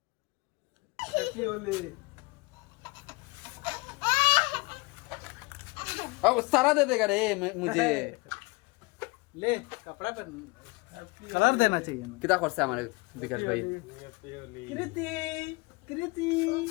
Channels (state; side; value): quieter; right; 25.9 dB